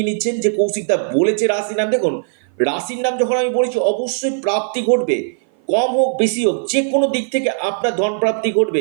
নিচ্ছেন যে কৌশিকদা বলেছে রাশির নাম। দেখুন, রাশির নাম যখন আমি বলেছি, অবশ্যই প্রাপ্তি ঘটবে, কম হোক বেশি হোক, যে কোনো দিক থেকে আপনার ধন প্রাপ্তি ঘটবে।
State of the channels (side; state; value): left; silent; 56 dB below the other